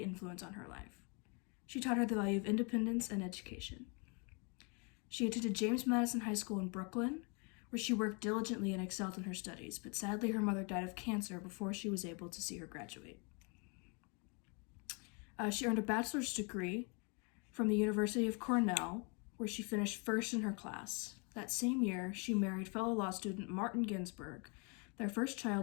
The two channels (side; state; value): right; quieter; 33.9 dB